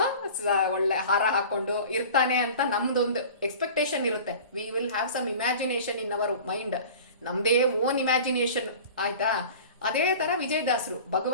ಒಳ್ಳೆ ಹಾರ ಹಾಕೊಂಡು ಇರ್ತಾನೆ ಅಂತ ನಮ್ದೊಂದು ಎಕ್ಸ್ಪೆಕ್ಟೇಷನ್ ಇರುತ್ತೆ. We will have some imagination in our mind, ನಮ್ದೇ ಓನ್ ಇಮ್ಯಾಜಿನೇಷನ್ ಆಯ್ತಾ. ಅದೇ ತರ ವಿಜಯದಾಸರು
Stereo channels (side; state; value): both; inverted; correlation -0.40